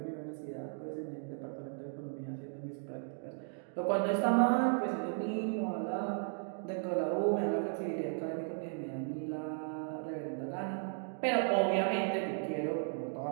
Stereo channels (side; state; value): left; silent; 54 dB below the other